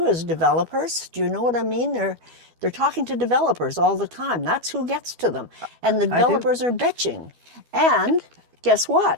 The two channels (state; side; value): late; left; 12 ms